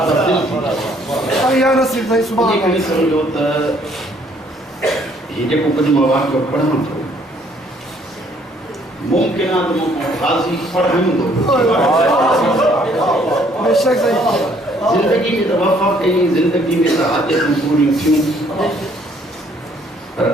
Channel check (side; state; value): both; normal; correlation 0.63